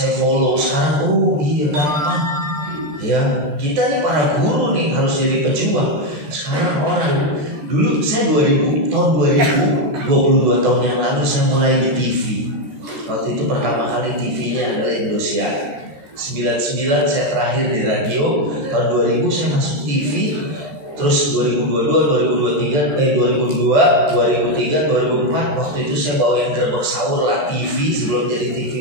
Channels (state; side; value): late; left; 14 ms